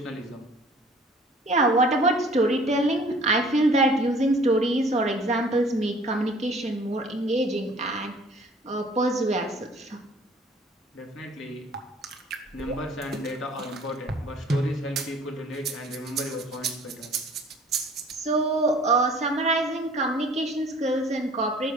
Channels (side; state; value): both; normal; correlation 0.52